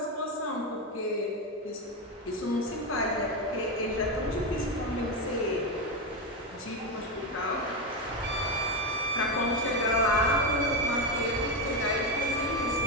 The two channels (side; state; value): both; normal; correlation 0.11